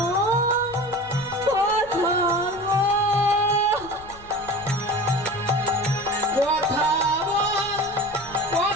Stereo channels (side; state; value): left; noise; rumble, 21 dB below the sound